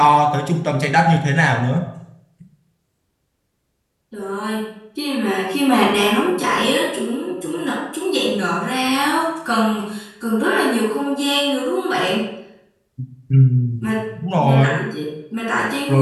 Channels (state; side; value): identical; both; correlation 1.00